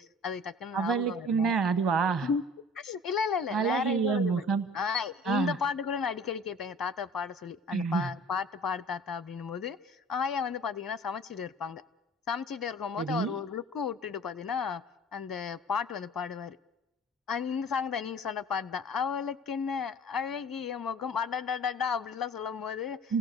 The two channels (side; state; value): both; normal; correlation 0.46